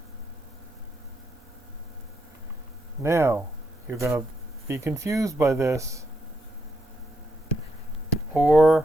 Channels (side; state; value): both; normal; correlation 0.80